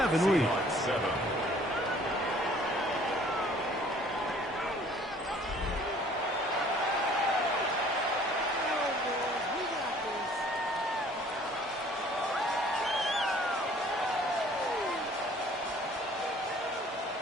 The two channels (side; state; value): both; normal; correlation 0.55